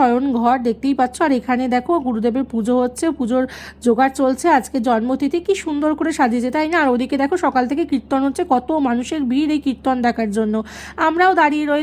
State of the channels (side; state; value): both; identical; correlation 1.00